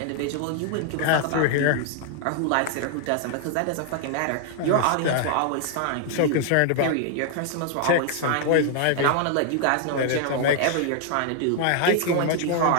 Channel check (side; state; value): both; different; correlation 0.00